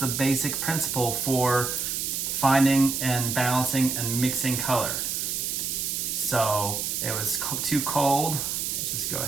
basic principle for finding and balancing and mixing color. So it was too cold. Let's just go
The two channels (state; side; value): noise; right; hiss, 1 dB below the sound